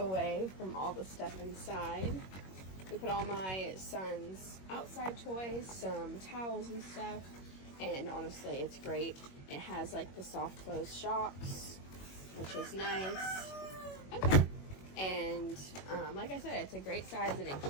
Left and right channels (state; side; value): late; right; 21 ms